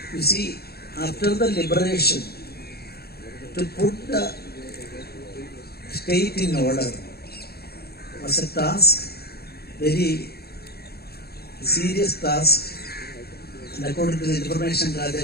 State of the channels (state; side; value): late; right; 0.46 ms